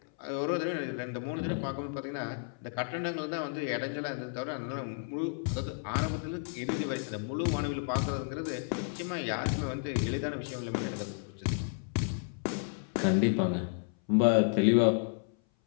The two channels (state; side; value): silent; right; 56 dB below the other